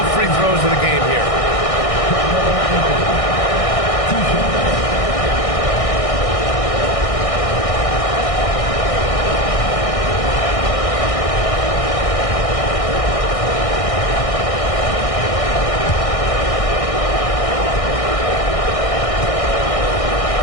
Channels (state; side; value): late; right; 1.6 ms